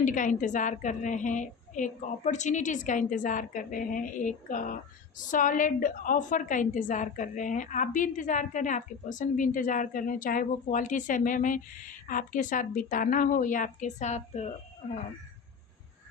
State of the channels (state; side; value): quieter; right; 5.9 dB